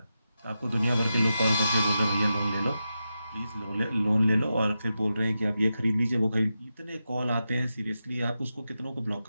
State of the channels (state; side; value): inverted; both; correlation -0.89